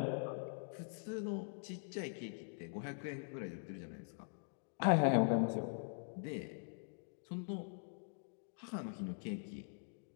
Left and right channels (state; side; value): silent; right; digital silence